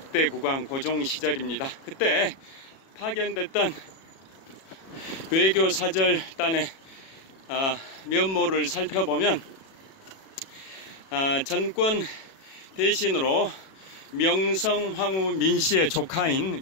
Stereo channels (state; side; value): late; right; 37 ms